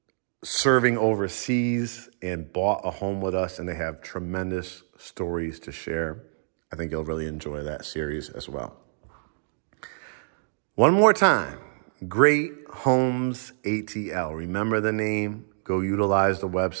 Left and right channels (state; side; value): silent; left; digital silence